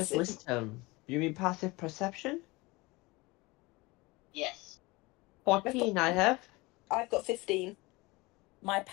wisdom. You mean passive perception? Yes. 14 I have. I've got 15. My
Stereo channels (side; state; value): right; quieter; 23.2 dB